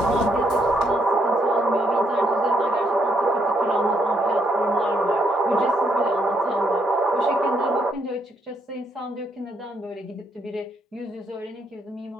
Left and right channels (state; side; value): normal; both; correlation 0.74